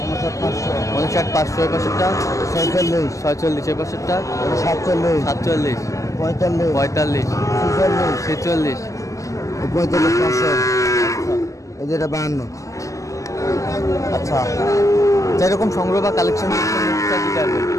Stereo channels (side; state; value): right; late; 0.16 ms